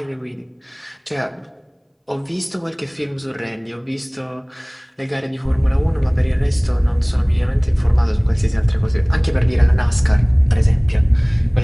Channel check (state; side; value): identical; both; correlation 1.00